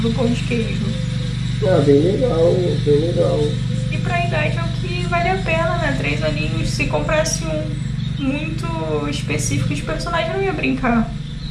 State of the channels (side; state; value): both; identical; correlation 1.00